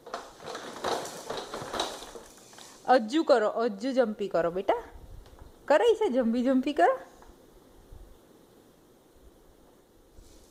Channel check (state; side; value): identical; both; correlation 1.00